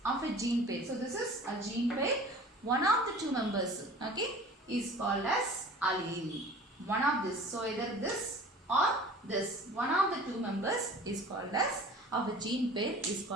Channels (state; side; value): normal; both; correlation 0.44